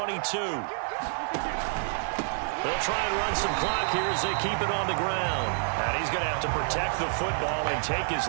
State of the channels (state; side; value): silent; left; digital silence